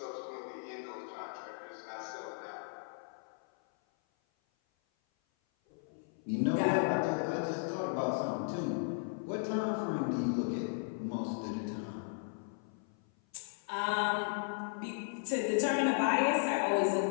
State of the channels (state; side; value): silent; right; 54 dB below the other